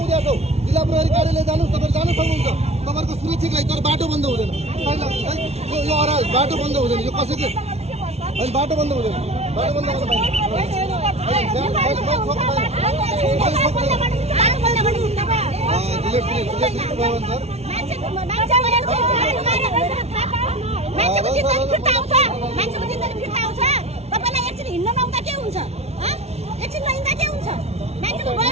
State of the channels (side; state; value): left; late; 0.31 ms